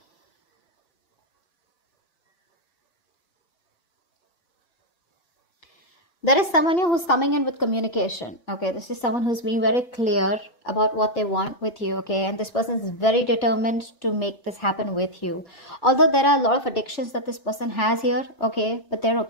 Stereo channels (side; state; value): right; late; 2.9 ms